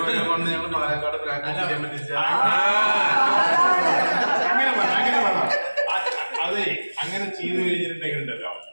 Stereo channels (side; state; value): both; inverted; correlation -1.00